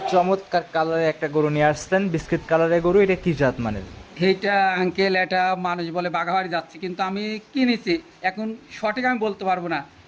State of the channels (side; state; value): both; identical; correlation 1.00